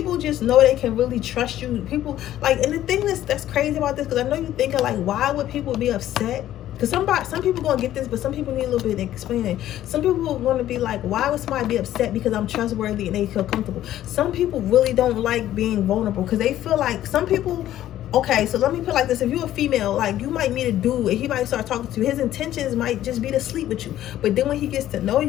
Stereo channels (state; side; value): quieter; right; 12.8 dB